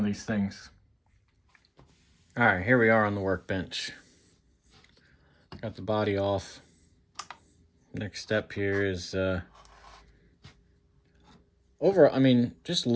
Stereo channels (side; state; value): both; identical; correlation 1.00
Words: these things. All right, here we are on the workbench. Got the body off. Next step here is just